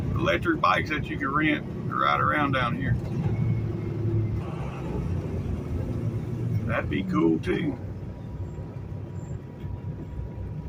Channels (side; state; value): both; identical; correlation 1.00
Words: electric bikes that you can rent to ride around down here. That'd be cool too.